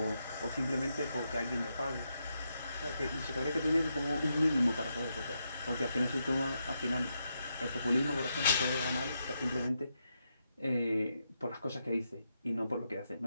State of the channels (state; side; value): inverted; both; correlation -0.83